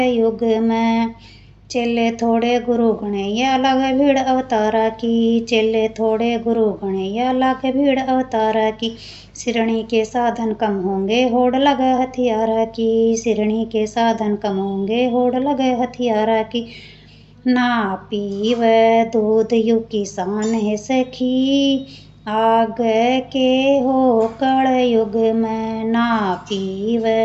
में। चेले थोड़े गुरु गणैया लागे भीड़ अवतारा की, चेले थोड़े गुरु गणैया लागे भीड़ अवतारा की। सिरणी के साधन कम होंगे होड़ लगे हथियारा की, सिरणी के साधन कम होंगे होड़ लगे हथियारा की। ना पीव दूध यु किसान है सखी, आगे के हो कलयुग में। ना पीव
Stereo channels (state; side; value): identical; both; correlation 1.00